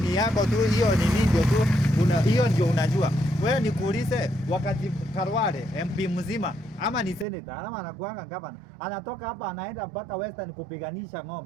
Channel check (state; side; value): drops out; left; at 7.2 s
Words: yako tu, hiyo ni ndio tu. Hiyo ndio unajua. Wewe nikuulize, wakati Karwale MP mzima ama ni senator ama anakuanga gavana, anatoka hapa anaenda mpaka Western kupiganisha